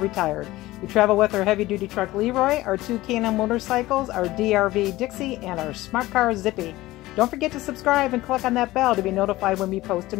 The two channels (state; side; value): quieter; right; 17.8 dB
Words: We travel with our heavy-duty truck Leroy, our two K&M motorcycles, our DRV Dixie, and our smart car Zippy. Don't forget to subscribe and click on that bell to be notified when we post a